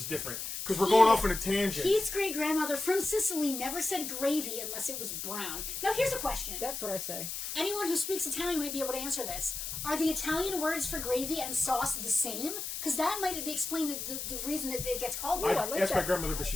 different. Because we're going off on a tangent. Keith's great-grandmother from Sicily never said gravy unless it was brown. Now, here's a question. That's what I say. Anyone who speaks Italian might be able to answer this. Are the Italian words for gravy and sauce the same? Because that might explain the reason that it gets called that. That's my grandmother, but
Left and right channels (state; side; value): noise; left; hiss, 5 dB below the sound